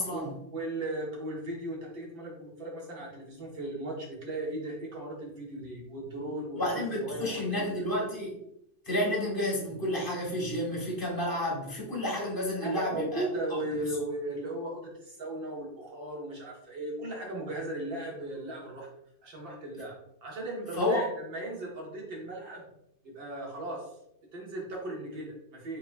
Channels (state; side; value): late; left; 2.5 ms